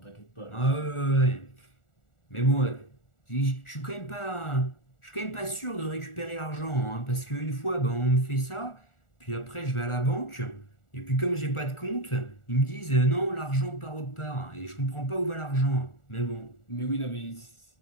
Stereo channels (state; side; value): late; right; 1.4 ms